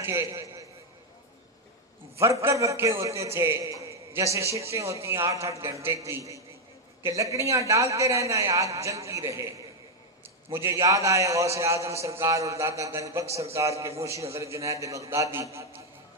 کے ورکر رکھے ہوتے تھے، جیسے شفٹیں ہوتی ہیں 8-8 گھنٹے کی، کہ لکڑیاں ڈالتے رہنا ہے، آگ جلتی رہے۔ مجھے یاد آئے غوث اعظم سرکار اور داتا گنج بخش سرکار کے موشی حضرت جنید بغدادی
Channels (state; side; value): normal; both; correlation 0.03